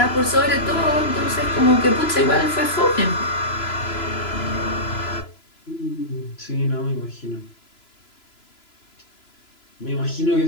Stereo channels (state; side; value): late; right; 3.0 ms